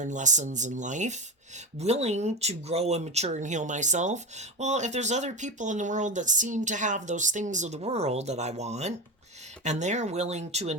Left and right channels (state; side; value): normal; both; correlation 0.20